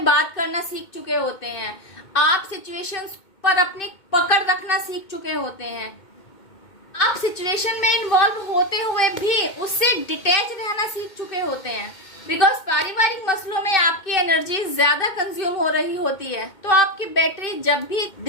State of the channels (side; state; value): right; late; 2.2 ms